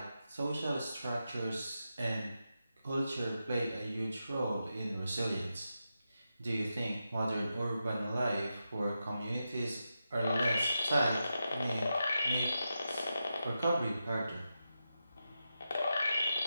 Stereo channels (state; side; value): inverted; both; correlation -0.88